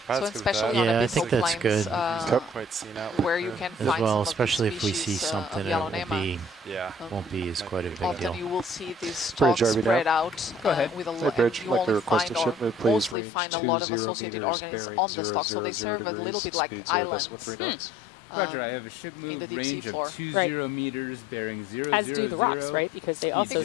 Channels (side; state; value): right; drops out; at 13.2 s